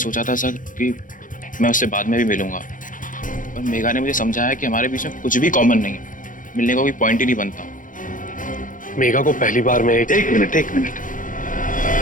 था सर कि मैं उससे बाद में भी मिलूंगा, पर मेघा ने मुझे समझाया कि हमारे बीच में कुछ भी कॉमन नहीं है, मिलने का कोई पॉइंट ही नहीं बनता। मेघा को पहली बार में एक मिनट।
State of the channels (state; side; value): late; right; 0.38 ms